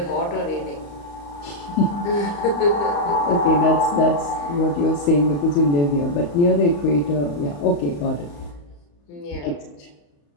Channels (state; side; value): late; right; 35 ms